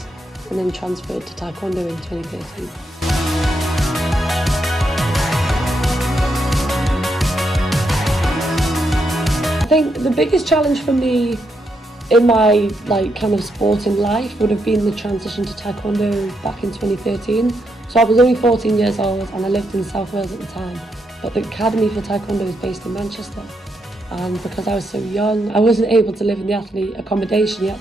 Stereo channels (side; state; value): both; normal; correlation 0.80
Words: and then transferred to Taekwondo in 2013. I think the biggest challenge for me in my kind of sporting life would have been the transition to Taekwondo back in 2013. So I was only 14 years old and I lived in South Wales at the time, but the academy for Taekwondo is based in Manchester. And because I was so young, I wasn't able to live in the athlete accommodation. You had